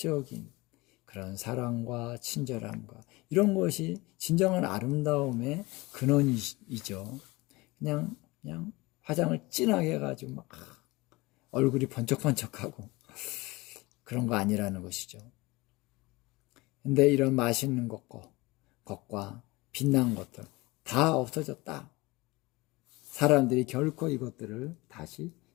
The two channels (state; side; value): quieter; right; 22.5 dB